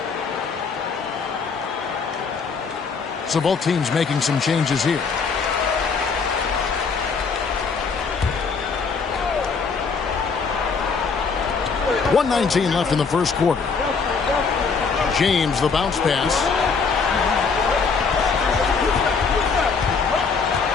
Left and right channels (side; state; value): right; quieter; 5.2 dB